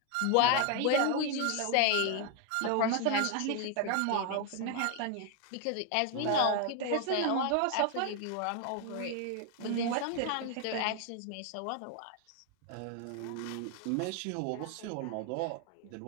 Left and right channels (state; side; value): different; both; correlation 0.01